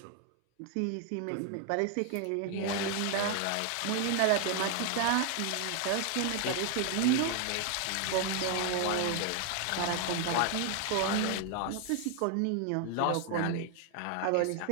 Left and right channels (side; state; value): both; different; correlation 0.00